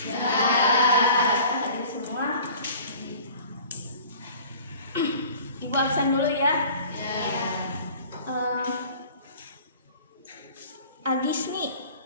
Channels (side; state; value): both; inverted; correlation -0.46